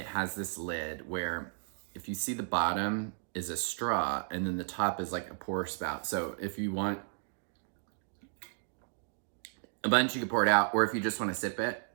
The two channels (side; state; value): left; silent; digital silence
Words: has this lid where if you see the bottom is a straw and then the top is like a pour spout. So if you want a bunch, you can pour it out, or if you just want to sip it,